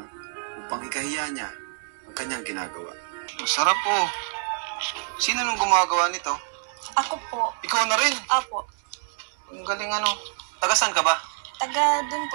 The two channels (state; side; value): silent; left; digital silence